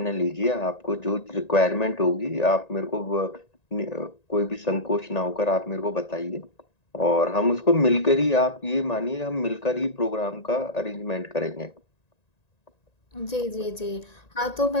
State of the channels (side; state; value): right; late; 1.9 ms